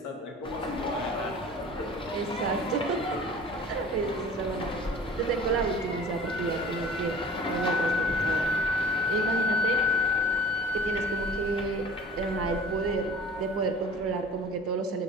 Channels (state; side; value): normal; both; correlation 0.44